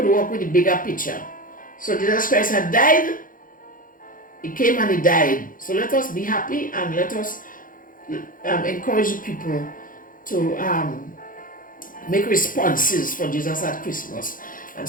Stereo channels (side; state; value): right; late; 0.40 ms